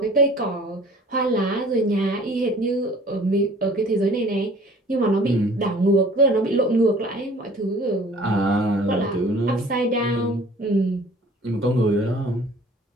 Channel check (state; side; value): normal; both; correlation 0.50